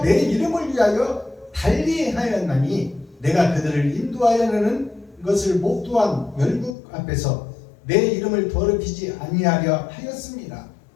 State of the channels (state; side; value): drops out; right; at 6.8 s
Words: 내 이름을 위하여 달리 하였나니 내가 그들을 인도하여내는 것을 목도한 열국 앞에서 내 이름을 더럽히지 아니하려 하였습니다.